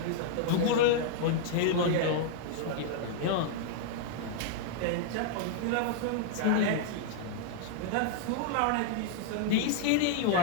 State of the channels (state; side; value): different; both; correlation -0.01